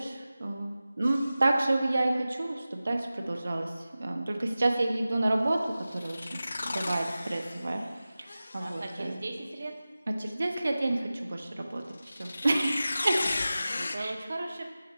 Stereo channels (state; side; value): inverted; both; correlation -0.96